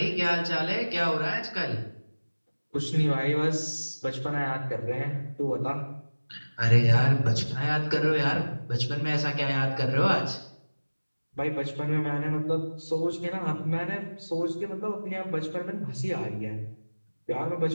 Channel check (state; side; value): inverted; both; correlation -1.00